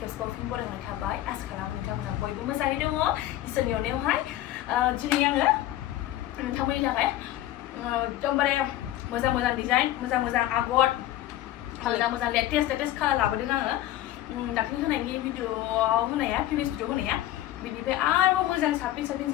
खेबसेबाव फिन बरायनाय थाबाय। आसा खालामो नोंथांमोना बयबो मोजाङै दङ। इसोरनि अननायावहाय दिनै आङो नोंथांमोननि थाखाय एकदमबारे मोजां डिजाइन, मोजां आगर, मोजां लेटेस्ट कालार लाबोदों आङो। दाख्लै होनायनि भिडिअआव होनाया, प्रिभियास भिडिअ होनाया बिनिफ्राय आरोबाव मोजां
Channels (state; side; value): quieter; right; 14.2 dB